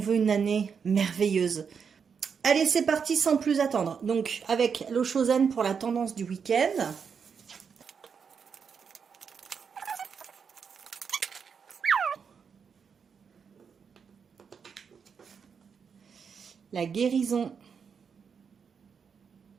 une année merveilleuse. Allez, c'est parti sans plus attendre. Donc, avec l'Osho Zen pour la tendance du week-end. La guérison.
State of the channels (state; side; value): quieter; left; 6.4 dB